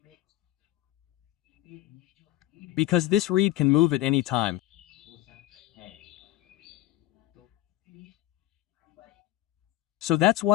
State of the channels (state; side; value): quieter; right; 15.5 dB